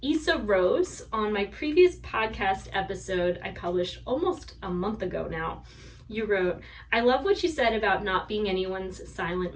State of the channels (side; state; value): both; identical; correlation 1.00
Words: Issa Rose. On my previous podcast episode I published almost a month ago now, you wrote, "I love what you said about not being anyone's silent